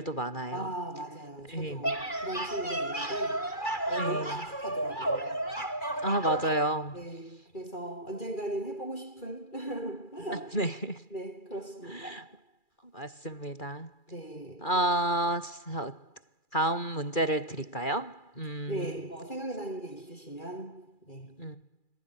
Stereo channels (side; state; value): right; late; 2.4 ms